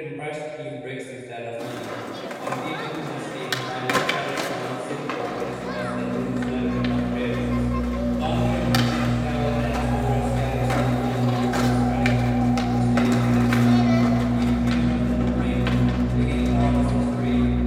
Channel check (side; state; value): both; identical; correlation 1.00